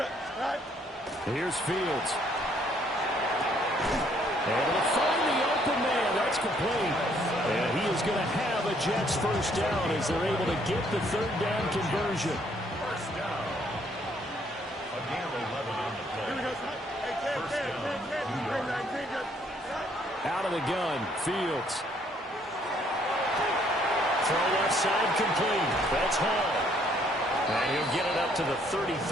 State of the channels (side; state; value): both; normal; correlation 0.66